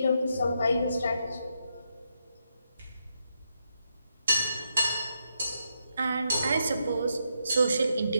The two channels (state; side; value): inverted; both; correlation -0.81